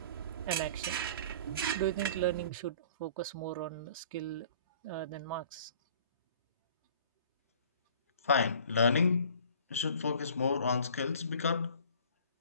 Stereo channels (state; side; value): inverted; both; correlation -0.50